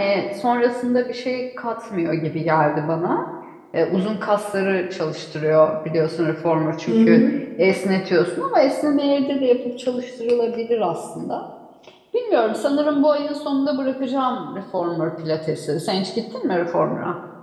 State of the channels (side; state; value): both; identical; correlation 1.00